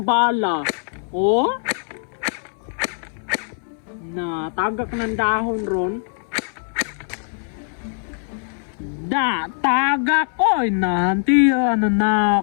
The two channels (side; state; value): right; silent; 64 dB below the other